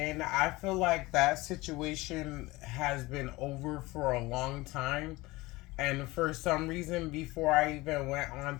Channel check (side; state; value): right; quieter; 21.0 dB